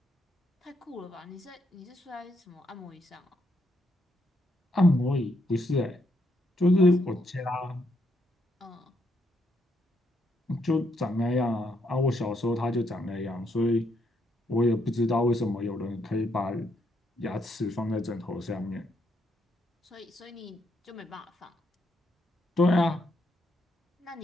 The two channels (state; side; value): normal; both; correlation 0.76